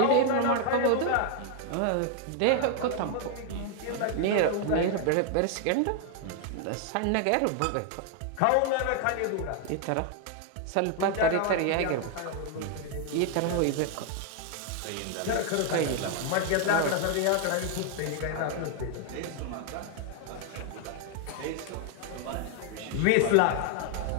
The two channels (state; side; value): different; both; correlation 0.00